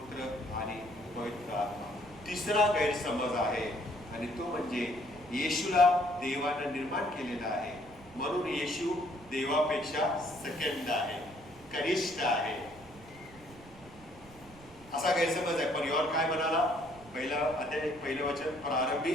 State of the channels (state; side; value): noise; right; rumble, 21 dB below the sound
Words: आणि पवित्र आत्मा. तिसरा गैरसमज आहे आणि तो म्हणजे येशूला देवाने निर्माण केलेला आहे, म्हणून येशू देवापेक्षा सेकंड आहे, कनिष्ठ आहे, असा गैरसमज आहे. पण योहान काय म्हणाला? पहिलं वचन प्रारंभी